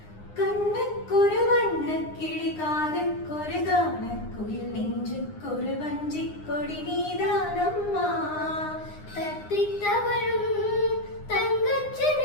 കണ്ണക്കൊരു വണ്ണക്കിളി കാതക്കൊരു ഗാനക്കുയിൽ നെഞ്ചുക്കൊരു വഞ്ചിക്കൊടി നീതാനമ്മ തത്തിത്തവളും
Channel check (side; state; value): right; late; 9.8 ms